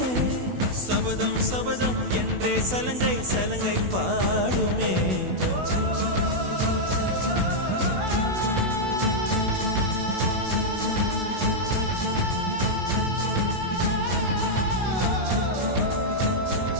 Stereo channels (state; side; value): late; left; 16 ms